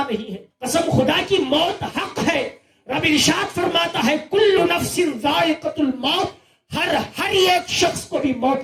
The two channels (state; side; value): identical; both; correlation 1.00